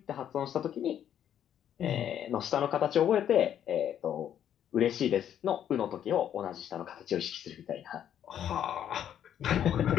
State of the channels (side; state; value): right; quieter; 10.0 dB